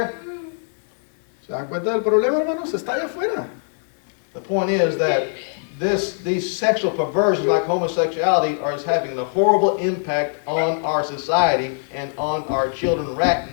¿Se dan cuenta del problema, hermanos? Está allá afuera. The point is that these sexual perversions like homosexuality are having a horrible impact on our society and on our children right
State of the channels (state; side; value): silent; right; digital silence